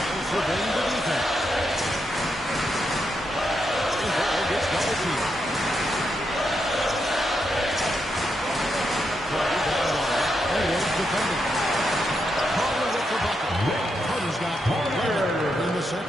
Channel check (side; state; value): both; normal; correlation 0.83